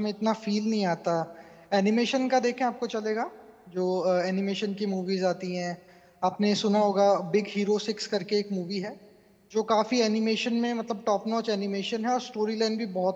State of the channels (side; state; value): both; identical; correlation 1.00